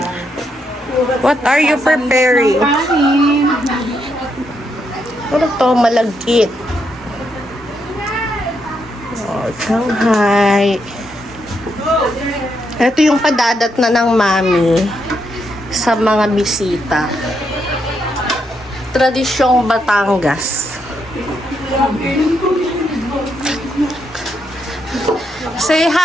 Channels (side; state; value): both; normal; correlation 0.79